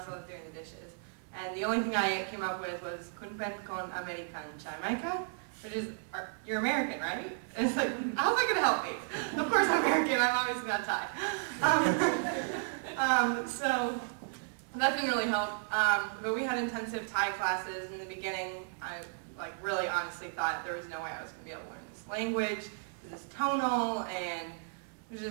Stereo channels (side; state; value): left; silent; digital silence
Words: while I was doing the dishes. And the only thing I came up with was Kunpen con American Jamaica, which is, you're American, right? And it's like, how's that gonna help me? Of course I'm American, I'm obviously not Thai. So that didn't really help. But we had intensive Thai classes in the beginning. I like really honestly thought there was no way I was gonna be able to learn this language. This is tonal, and it was